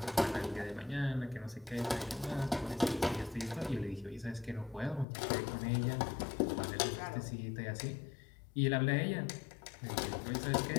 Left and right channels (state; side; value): drops out; right; at 5.1 s